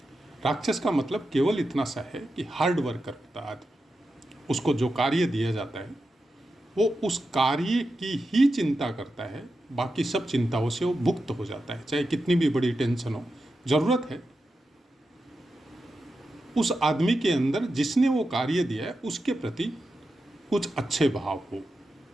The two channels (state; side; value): normal; both; correlation 0.89